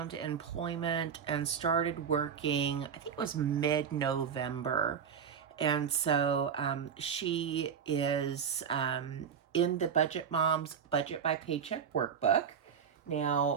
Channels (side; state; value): left; quieter; 7.3 dB